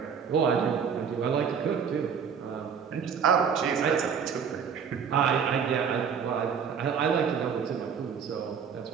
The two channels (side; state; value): left; quieter; 6.9 dB